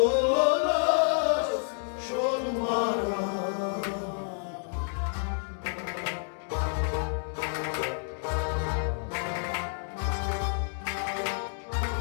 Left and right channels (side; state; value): right; silent; digital silence